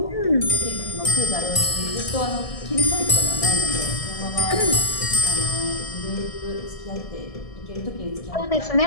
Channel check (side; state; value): right; late; 1.7 ms